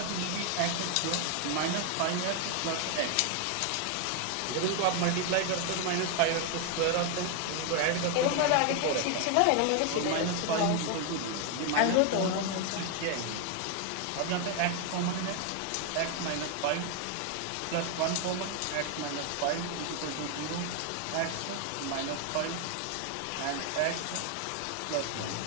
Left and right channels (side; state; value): both; different; correlation 0.01